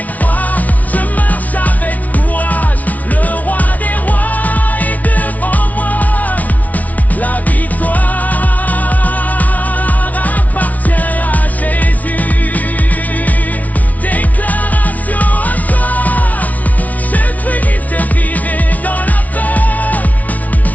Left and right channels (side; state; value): right; late; 0.072 ms